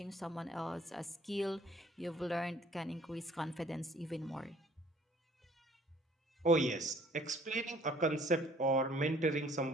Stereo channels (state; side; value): normal; both; correlation 0.56